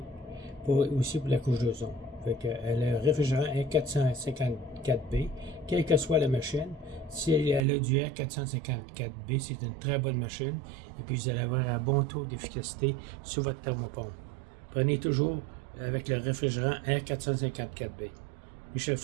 aussi pour la couche d'ozone. Le réfrigérant R454B, quelle que soit la machine, si elle a du R454B, c'est une très bonne machine. Et puis vous allez avoir un bon taux d'efficacité sur votre thermopompe. Prenez toujours avec le réfrigérant R454B. Michel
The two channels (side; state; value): left; drops out; at 7.7 s